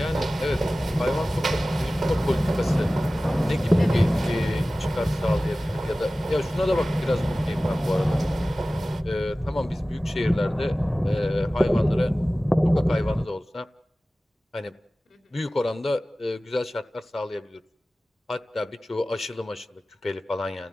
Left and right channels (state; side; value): normal; both; correlation 0.97